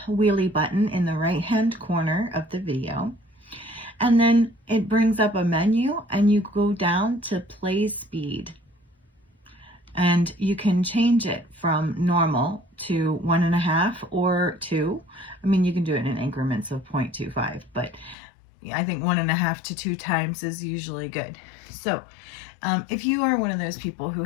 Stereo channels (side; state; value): right; drops out; at 18.2 s